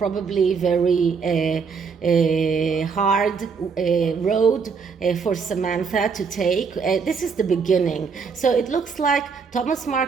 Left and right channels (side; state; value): left; quieter; 5.6 dB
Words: very hard road for Samantha to take. This is the beginning. So it looks like Thomas